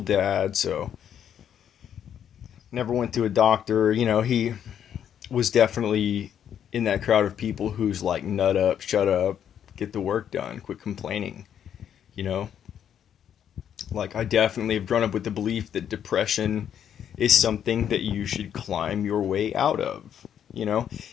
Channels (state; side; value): quieter; right; 9.2 dB